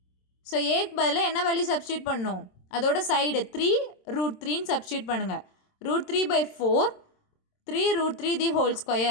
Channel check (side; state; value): right; late; 27 ms